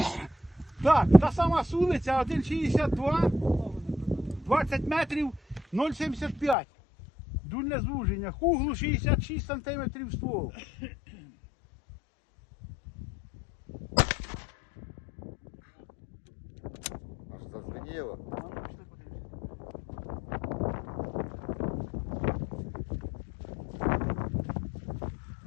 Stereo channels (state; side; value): drops out; right; at 6.6 s